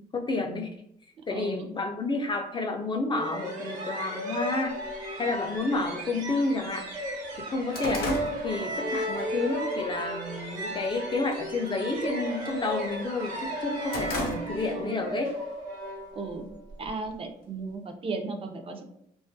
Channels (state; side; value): normal; both; correlation 0.42